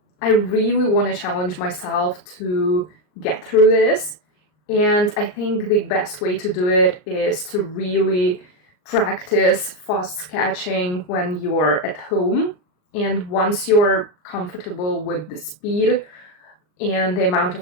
I really want to challenge myself to get through this. And I think the best way to do it is to really practice fast sketching when you're at home. And once you're comfortable with the speed and the amount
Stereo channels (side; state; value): right; late; 39 ms